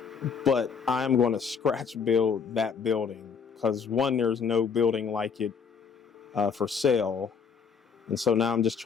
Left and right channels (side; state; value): right; quieter; 6.2 dB